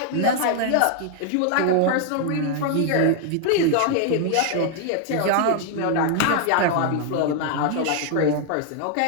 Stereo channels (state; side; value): different; both; correlation 0.00